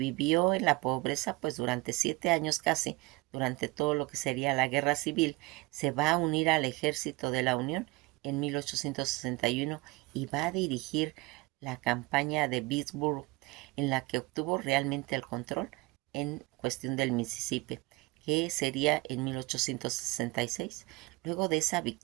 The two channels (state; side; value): quieter; left; 23.6 dB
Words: en la pobreza pues durante 7 años casi, durante todo lo que sería la guerra civil. Se va a unir al ejército de la Unión en 1861 y va a dirigir la campaña de Vicksburg, en la que obtuvo realmente el control en cuestión del Mississippi, que sería en 1866. Luego de esa